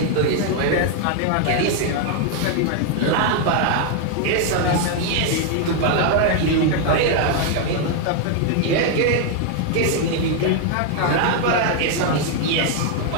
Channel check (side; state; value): both; different; correlation 0.00